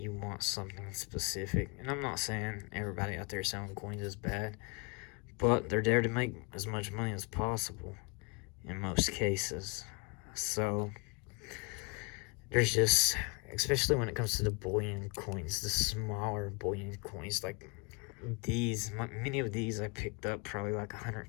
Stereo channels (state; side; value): quieter; right; 31.3 dB